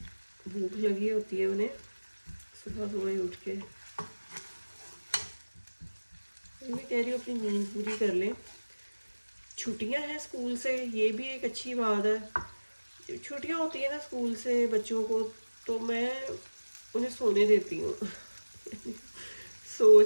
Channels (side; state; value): both; inverted; correlation -1.00